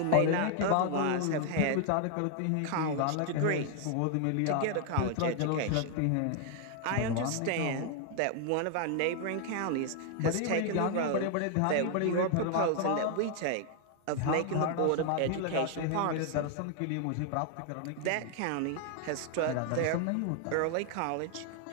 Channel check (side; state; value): both; different; correlation 0.00